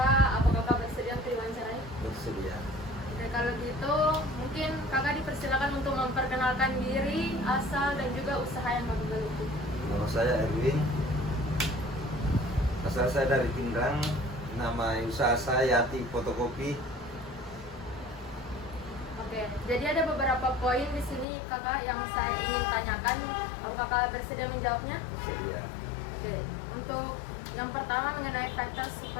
apa kakak bersedia untuk diwawancarai? Bersedia. Oke, kalau gitu mungkin kakak dipersilakan untuk memperkenalkan diri, asal dan juga usaha yang bapak geluti. Nama saya Erwin. Asal saya dari Pindrang. Nama usaha saya Yati Fotokopi. Oke, jadi ada beberapa poin di sini kakak yang saya ingin tanyakan. Apakah kakak bersedia menjawabnya? Bersedia. Oke, untuk yang pertama mengenai factors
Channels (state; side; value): drops out; right; at 21.2 s